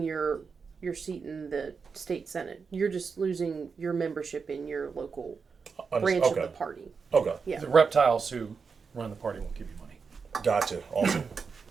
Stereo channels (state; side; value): quieter; left; 5.4 dB